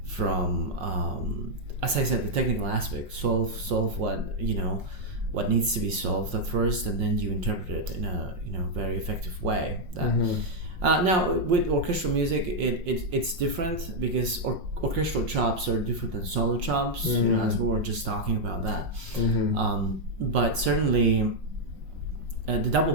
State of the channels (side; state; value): left; late; 5.6 ms